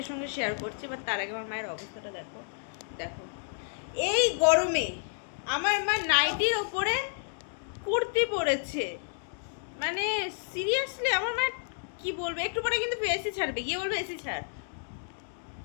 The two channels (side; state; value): right; silent; digital silence